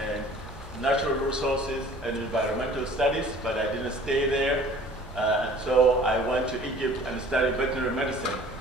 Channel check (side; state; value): both; normal; correlation 0.49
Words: Natural Resources and Environmental Studies, but I didn't stay there. And so I went to Egypt and studied veterinary medicine.